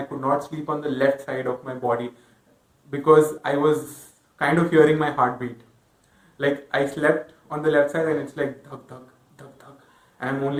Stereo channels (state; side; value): identical; both; correlation 1.00